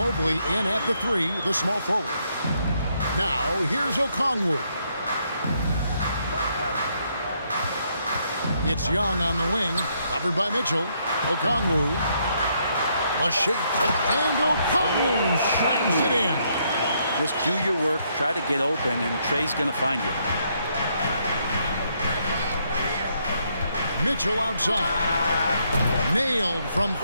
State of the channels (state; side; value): inverted; both; correlation -0.74